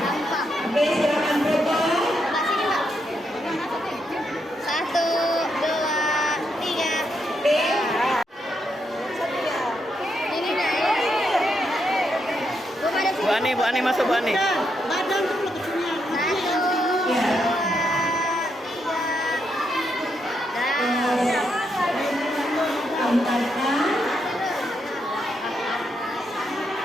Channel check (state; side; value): normal; both; correlation 0.80